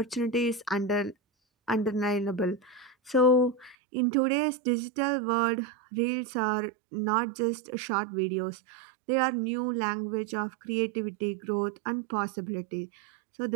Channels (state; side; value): drops out; left; at 3.8 s